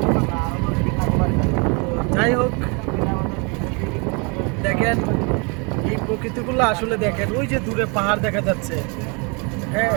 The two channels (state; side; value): quieter; left; 32.3 dB